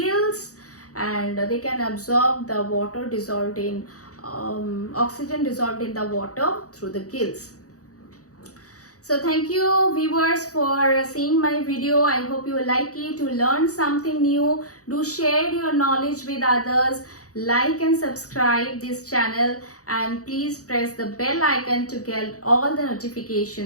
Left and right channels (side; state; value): right; late; 0.66 ms